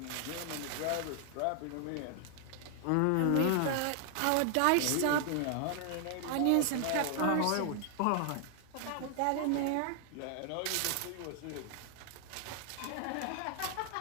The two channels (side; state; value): both; different; correlation 0.00